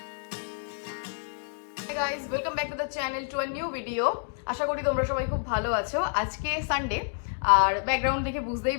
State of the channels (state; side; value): silent; right; digital silence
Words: Guys, welcome back to the channel to a new video. আশা করি তোমরা সবাই খুব ভালো আছো। আজকে সানডে, আর ব্যাকগ্রাউন্ড দেখে বুঝতেই